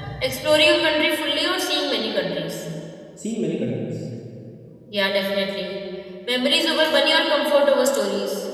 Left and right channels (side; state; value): both; identical; correlation 1.00